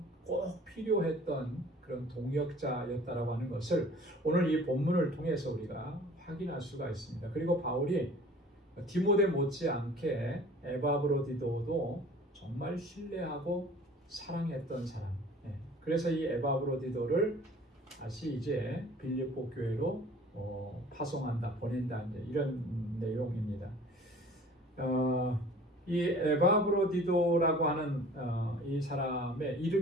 필요했던 그런 동역자였다라고 하는 것을 오늘 이 본문을 통해서 우리가 확인할 수가 있습니다. 그리고 바울이 디모데 못지않게 에바브로디도도 정말 신뢰하고 사랑했던 사람. 그래서 이 에바브로디도를 다시 이제 빌립보 교회로 파송한다, 보낸다, 이제 이런 내용입니다. 이 에바브로디도라고 하는 이 사람의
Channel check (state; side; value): normal; both; correlation 0.48